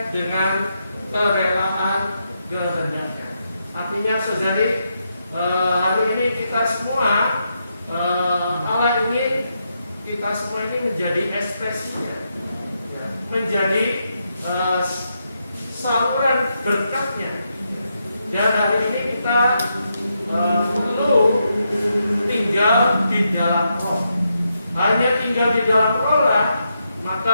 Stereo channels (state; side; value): inverted; both; correlation -0.82